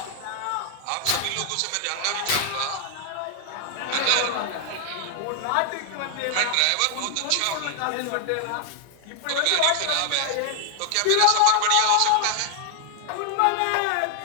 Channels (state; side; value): different; both; correlation 0.00